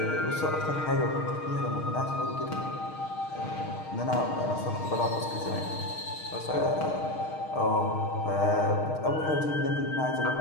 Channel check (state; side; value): late; right; 6.5 ms